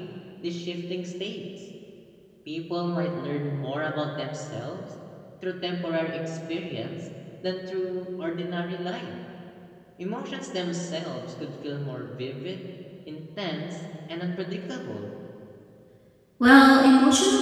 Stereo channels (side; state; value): both; identical; correlation 1.00